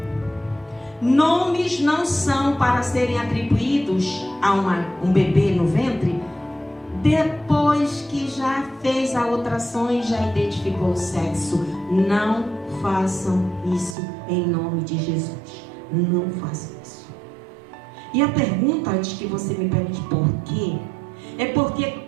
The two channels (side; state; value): left; drops out; at 14.0 s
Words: nomes não são para serem atribuídos a um bebê no ventre depois que já fez a ultrassom e já identificou o sexo. Não façam isso em nome de Jesus. Não façam isso. E a pergunta, antes que você me pergunte por quê, é porque